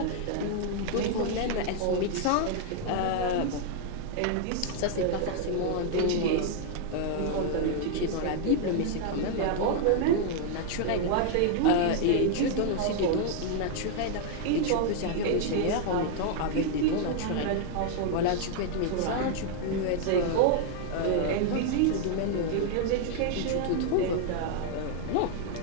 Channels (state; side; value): different; both; correlation 0.00